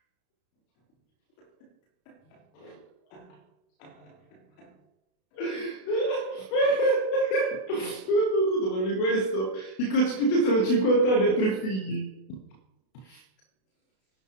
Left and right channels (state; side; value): late; right; 32 ms